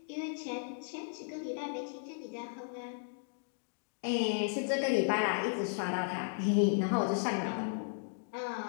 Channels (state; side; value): silent; right; digital silence